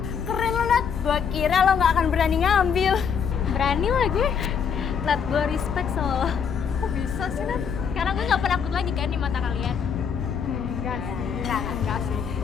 Keren lo, Nat. Gua kira lo gak akan berani ngambil. Berani lah gue. Nat, gue respect sama lo. Kok bisa sih, Nat? Karena gue gak penakut lagi kan di mata kalian. Enggak sih. Enggak sih.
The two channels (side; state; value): right; quieter; 6.9 dB